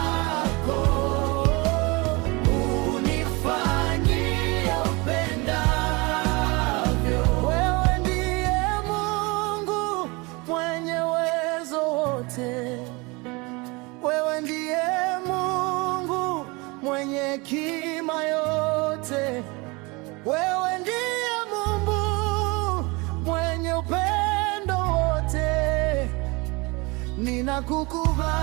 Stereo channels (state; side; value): quieter; left; 26.2 dB